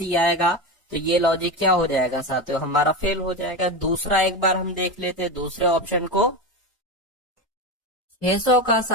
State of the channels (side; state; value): both; normal; correlation 0.19